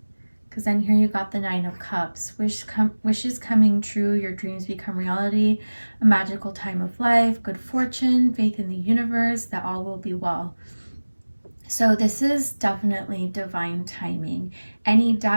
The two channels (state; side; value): inverted; both; correlation -1.00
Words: Because then here you got the 9 of Cups. Wishes coming true, your dreams become reality, a magical time of life, good fortune, faith in the universe, that all will be well. So this is definitely divine timing. Any